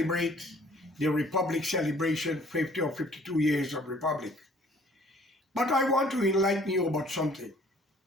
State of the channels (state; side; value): normal; both; correlation 0.56